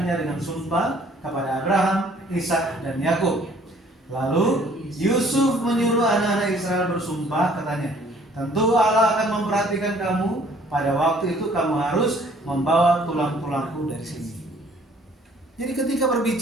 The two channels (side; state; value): both; normal; correlation 0.58